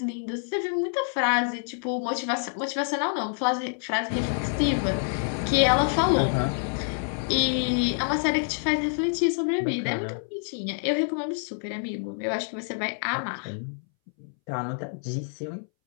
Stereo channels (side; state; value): right; silent; 60 dB below the other